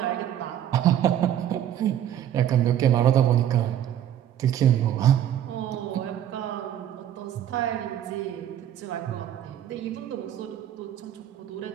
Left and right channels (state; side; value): quieter; left; 10.8 dB